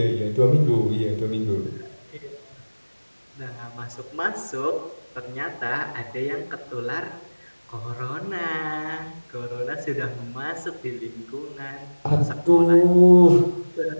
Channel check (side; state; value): both; inverted; correlation -1.00